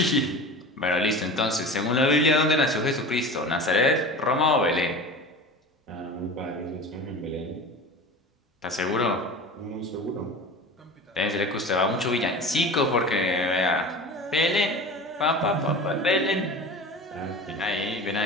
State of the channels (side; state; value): both; normal; correlation 0.34